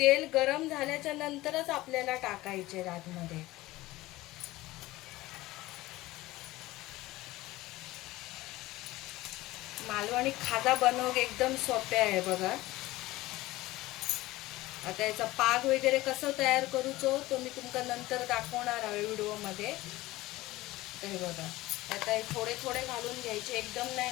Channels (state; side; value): quieter; right; 18.2 dB